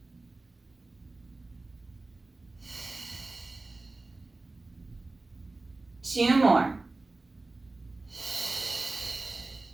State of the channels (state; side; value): quieter; left; 3.3 dB